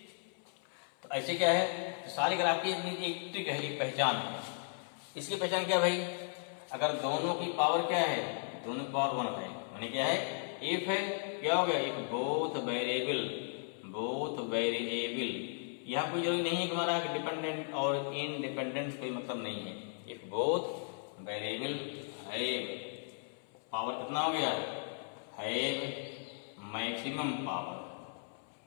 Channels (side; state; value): right; silent; 54 dB below the other